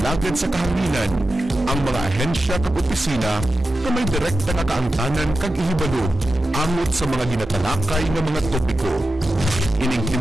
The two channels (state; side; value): normal; both; correlation 0.91